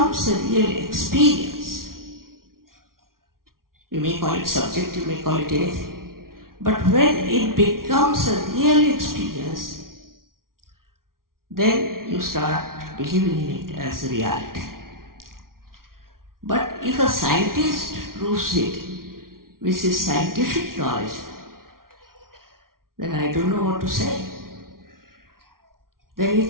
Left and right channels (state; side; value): late; left; 0.92 ms